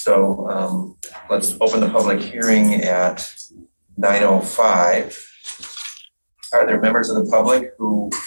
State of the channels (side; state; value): both; inverted; correlation -1.00